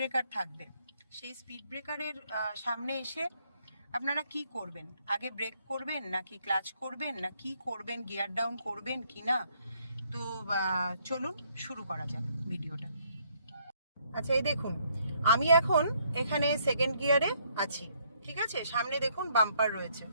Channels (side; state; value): both; inverted; correlation -0.69